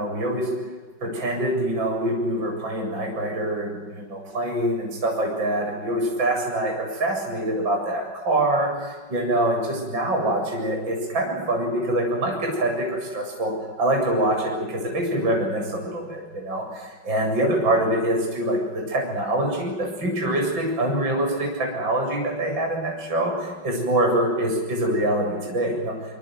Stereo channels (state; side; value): late; left; 5.4 ms